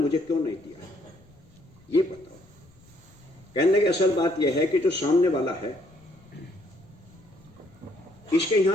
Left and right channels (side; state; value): left; noise; rumble, 28 dB below the sound